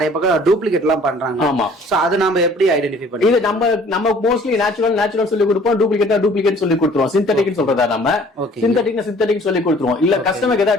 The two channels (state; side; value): normal; both; correlation 0.53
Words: பக்கம் டூப்ளிகேட் எல்லாம் பண்றாங்க. ஆமா. சோ அது நாம எப்படி ஐடென்டிஃபை பண்ணி? இது நம்ம மோஸ்ட்லி நேச்சுரல் சொல்லி கொடுப்போம், டூப்ளிகேட் சொல்லி கொடுத்துருவோம். சிந்தட்டிக் சொல்றதா நம்ம சிந்தட்டிக் சொல்லி கொடுத்துருவோம். இல்ல கஸ்டமருக்கு